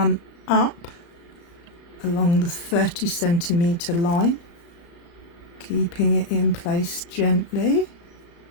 up along the 30 centimetre line, keeping it in place gently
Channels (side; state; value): right; late; 35 ms